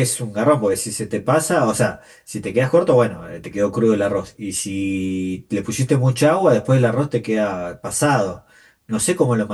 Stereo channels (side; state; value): both; identical; correlation 1.00